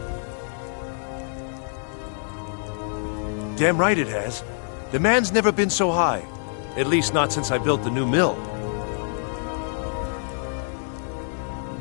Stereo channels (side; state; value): right; silent; digital silence